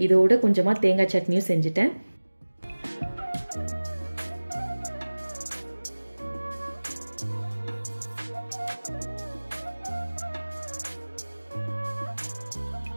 இதோட கொஞ்சமாக தேங்காய் சட்னியும் செஞ்சுட்டேன்.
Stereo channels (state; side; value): inverted; both; correlation -1.00